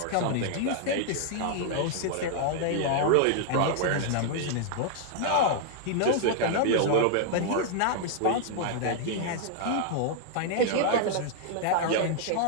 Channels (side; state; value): both; different; correlation -0.01